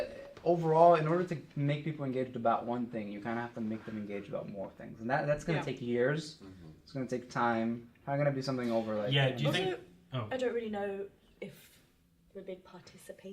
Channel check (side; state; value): both; identical; correlation 1.00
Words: overall, in order to make people engaged about one thing, you kind of have to make them engaged about more things, and that's going to take years. It's going to take time. Not going to be something over like. Yeah, do you Also, think? Oh, I don't really know if we're big